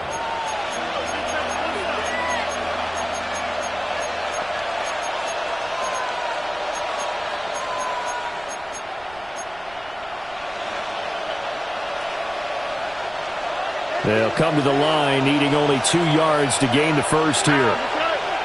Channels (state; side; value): noise; right; rumble, 23 dB below the sound